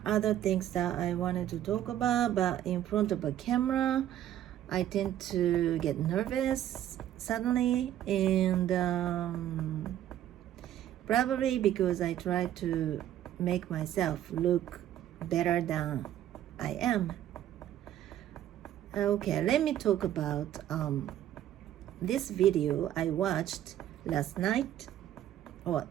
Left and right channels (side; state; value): left; quieter; 11.8 dB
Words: other things that I wanted to talk about, but in front of a camera I tend to get nervous suddenly, and probably because I try to make myself look better than I am. Okay, let me talk about this video I watched last night, or